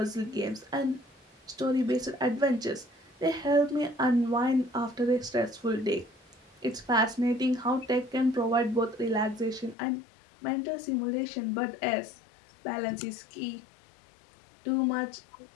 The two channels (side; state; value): right; drops out; at 9.8 s